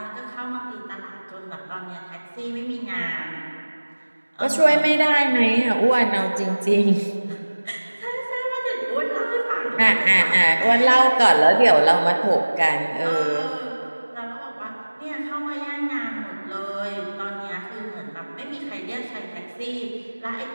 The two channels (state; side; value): inverted; both; correlation -1.00